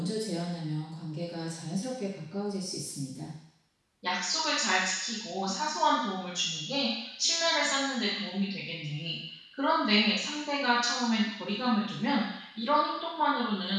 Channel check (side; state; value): both; identical; correlation 1.00